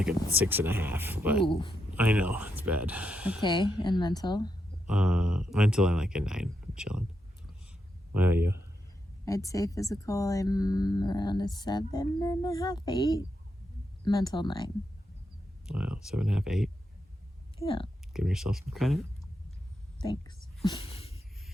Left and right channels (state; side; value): normal; both; correlation 0.83